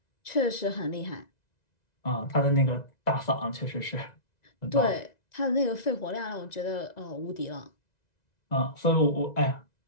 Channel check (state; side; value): late; right; 1.9 ms